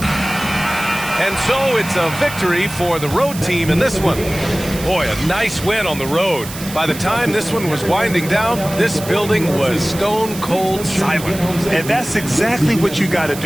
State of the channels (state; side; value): noise; right; hiss, 12 dB below the sound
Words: And so it's a victory for the road team in this one. Boy, a nice win on the road. By the time this one was winding down, this building was stone cold silent. And that's exactly what you got to